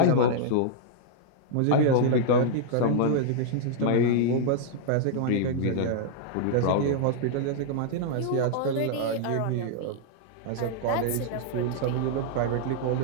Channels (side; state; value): both; different; correlation -0.01